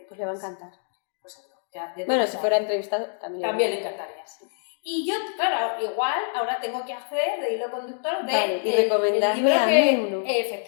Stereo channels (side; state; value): right; silent; digital silence